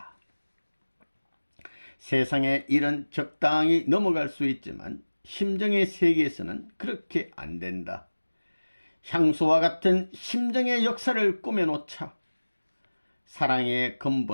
세상의 일은 적당히 넘어갈 수 있지만 심정의 세계에서는 그렇게 안 된다. 향수와 같은 심정의 역사를 꾸며놓자. 사랑의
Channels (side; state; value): both; inverted; correlation -1.00